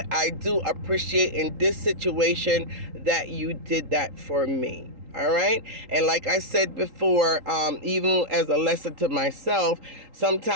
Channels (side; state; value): left; late; 3.8 ms